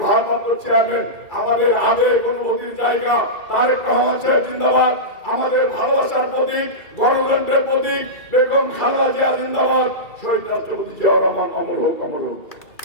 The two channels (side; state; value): right; late; 2.3 ms